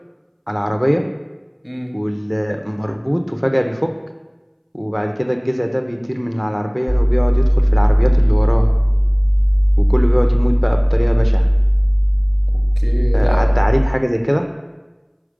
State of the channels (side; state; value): both; identical; correlation 1.00